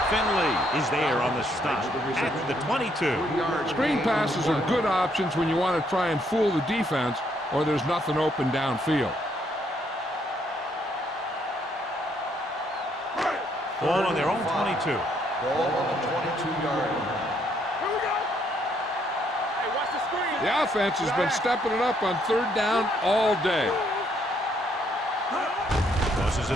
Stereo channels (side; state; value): both; normal; correlation 0.71